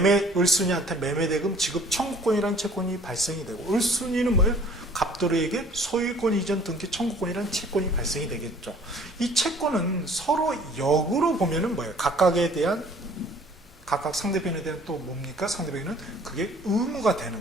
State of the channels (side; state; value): both; normal; correlation 0.54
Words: 을순이한테 매매대금 지급 청구권이라는 채권이 발생이 되고, 을순이는 뭐예요? 갑돌이에게 소유권 이전 등기 청구권이라는 채권이 발생이 되겠죠. 이 채권은 서로 역으로 보면은 뭐예요? 각각 상대편에 대한 또 뭡니까? 상대편에는 그게 의무가